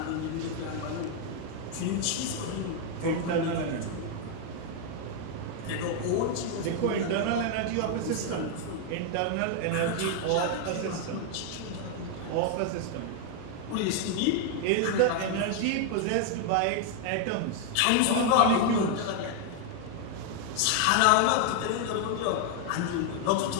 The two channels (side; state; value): both; different; correlation 0.00